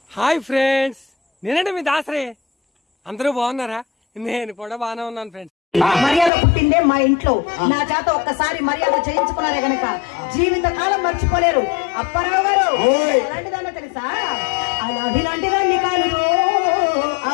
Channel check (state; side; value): drops out; right; at 6.3 s